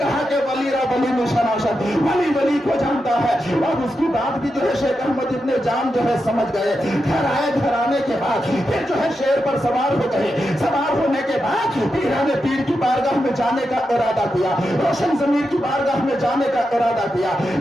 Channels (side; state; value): both; normal; correlation 0.87